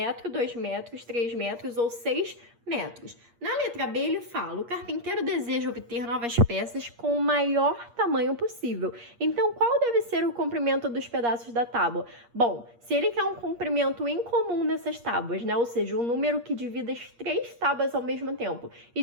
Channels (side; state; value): left; late; 8.5 ms